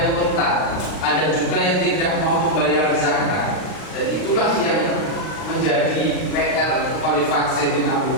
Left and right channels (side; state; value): right; late; 39 ms